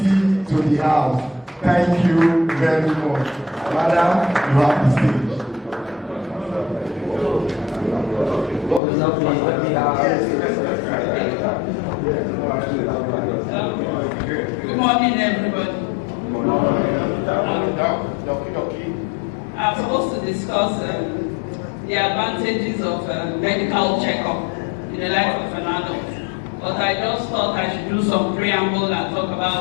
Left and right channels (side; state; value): right; drops out; at 8.8 s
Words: to the house. Thank you very much. Madam, you have the stage. Good morning, everybody. I'm supposed to discuss the advantages of medical checkup in the life of an adult, but I just thought I should do some preamble and talk